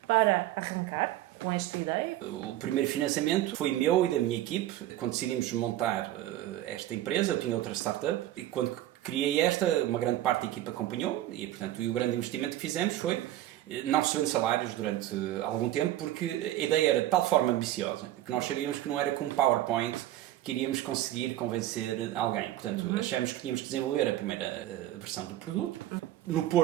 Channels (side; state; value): left; quieter; 13.9 dB